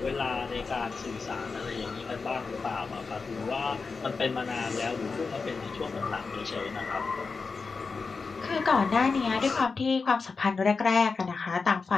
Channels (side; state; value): right; quieter; 4.6 dB